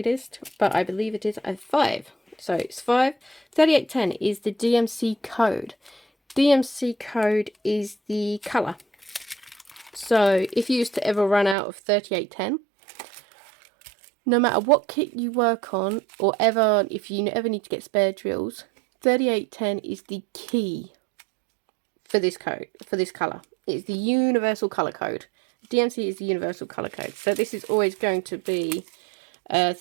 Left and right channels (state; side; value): drops out; left; at 11.6 s